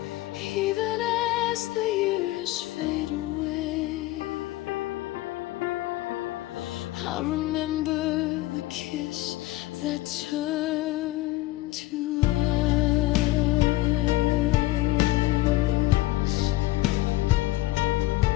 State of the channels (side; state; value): right; quieter; 17.9 dB